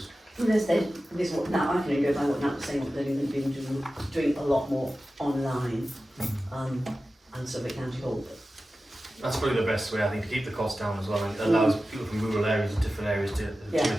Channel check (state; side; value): normal; both; correlation 0.94